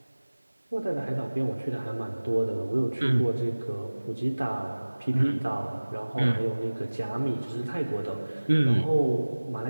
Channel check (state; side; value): inverted; both; correlation -1.00